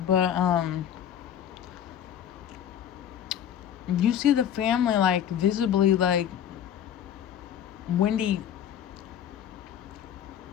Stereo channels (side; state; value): right; quieter; 9.6 dB